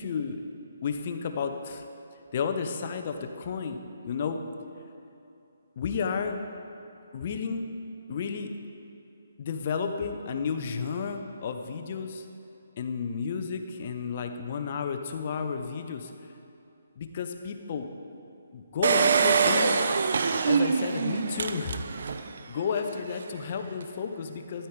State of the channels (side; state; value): both; inverted; correlation -0.69